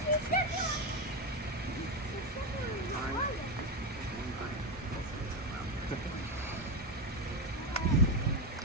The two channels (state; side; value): normal; both; correlation 0.11